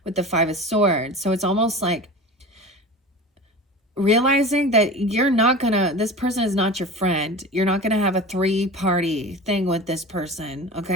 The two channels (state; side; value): normal; both; correlation 0.34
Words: with the 5 of Swords. So it's almost like realizing that you're not gonna, this person is not your friend. You're not gonna have a 3-party thing with this person,